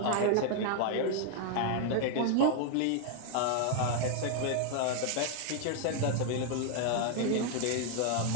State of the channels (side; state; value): both; different; correlation 0.00